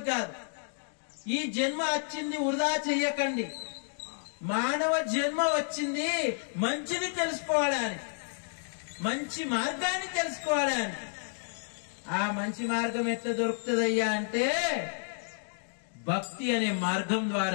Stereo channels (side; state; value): right; silent; digital silence